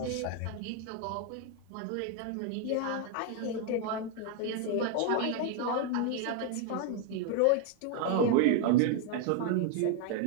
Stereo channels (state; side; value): different; both; correlation 0.01